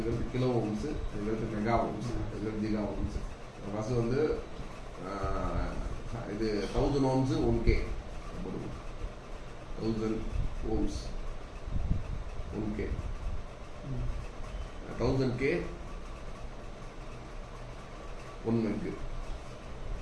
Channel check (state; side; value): identical; both; correlation 1.00